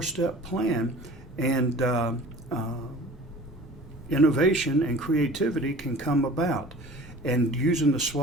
plan, and innovation and creativity can come about. And using the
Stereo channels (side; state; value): both; normal; correlation 0.43